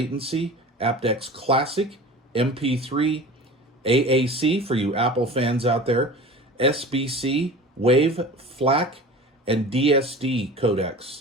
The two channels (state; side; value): normal; both; correlation 0.37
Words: aptX classic, MP3, AAC for you Apple fans out there, SBC, Wave, FLAC, and DSD